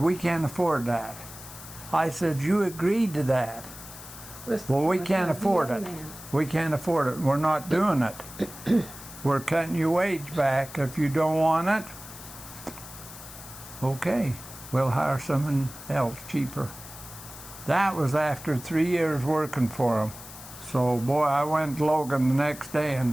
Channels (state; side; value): noise; left; hiss, 15 dB below the sound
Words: can't afford that. I said, you agreed to that. Well, we can't afford it. We can't afford it. We're not doing it. We're cutting your wage back. If you don't want it, okay, we'll hire someone else cheaper. That was after 3 years working for him. So, boy, I went to Logan the next day